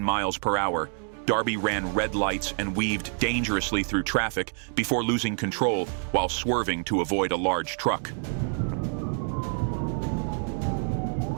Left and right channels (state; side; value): silent; left; 60 dB below the other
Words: miles per hour, Darby ran red lights and weaved dangerously through traffic before losing control while swerving to avoid a large truck.